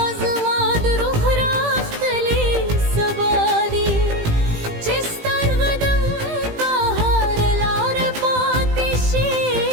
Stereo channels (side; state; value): left; late; 18 ms